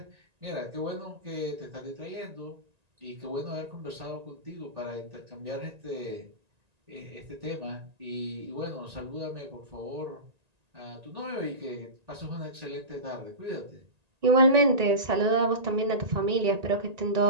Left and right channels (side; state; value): left; late; 1.9 ms